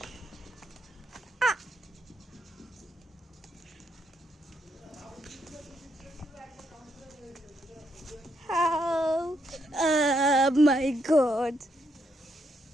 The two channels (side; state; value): both; normal; correlation 0.77